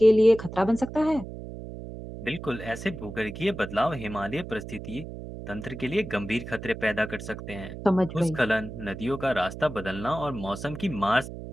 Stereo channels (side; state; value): right; noise; hum, 10 dB below the sound